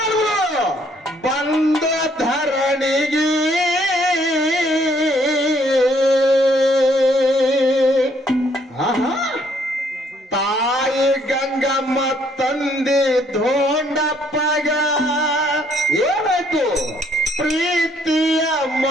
ಬಂದ ಧರಣಿಗೆ ತಾಯಿ ಗಂಗಮ್ಮ ತಂದೆ ಧೋಂಡಪ್ಪಗ ಏನಾಯ್ತು ಪ್ರೀತಿಯ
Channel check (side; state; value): both; normal; correlation 0.66